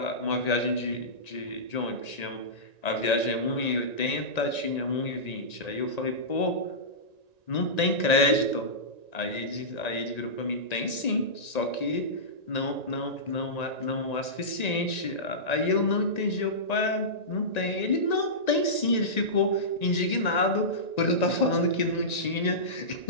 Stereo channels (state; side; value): late; right; 1.9 ms